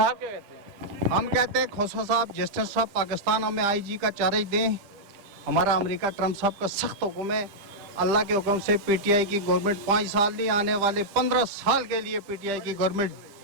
क्या कहते हैं? हम कहते हैं खोसा साहब, जस्टिस साहब पाकिस्तान हमें IG का चार्ज दें। हमारा अमेरिका ट्रम्प साहब का सख्त हुक्म है, अल्लाह के हुक्म से PTI की गवर्नमेंट 5 साल नहीं, आने वाले 15 साल के लिए PTI की गवर्नमेंट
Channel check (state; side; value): late; left; 10 ms